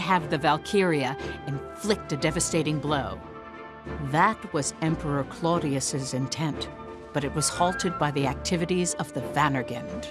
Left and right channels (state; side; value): identical; both; correlation 1.00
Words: the Valkyria inflict a devastating blow. That was Emperor Claudius's intent, but it was halted by the activities of the